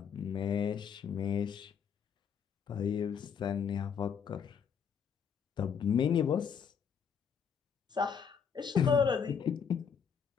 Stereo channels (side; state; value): right; quieter; 7.0 dB